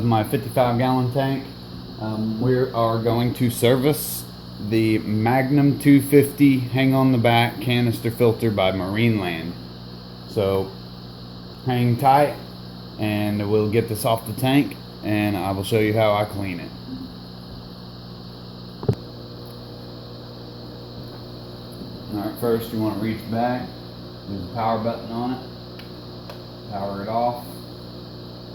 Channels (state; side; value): identical; both; correlation 1.00